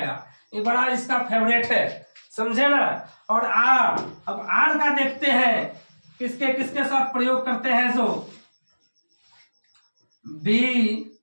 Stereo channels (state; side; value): inverted; both; correlation -1.00